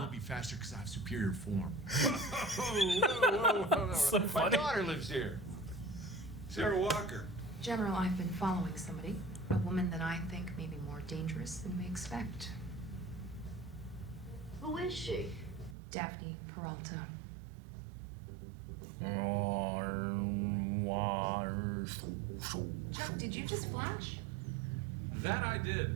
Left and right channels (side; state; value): left; drops out; at 15.8 s